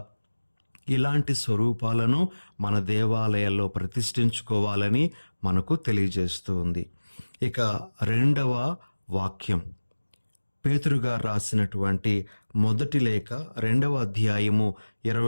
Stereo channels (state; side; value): inverted; both; correlation -1.00